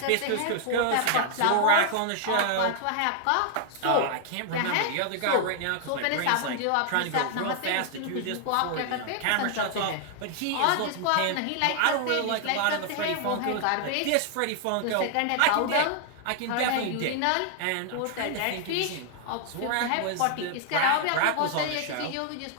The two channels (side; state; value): both; different; correlation 0.00